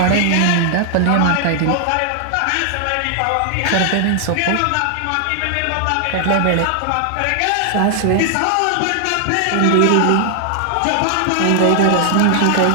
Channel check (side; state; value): both; different; correlation 0.00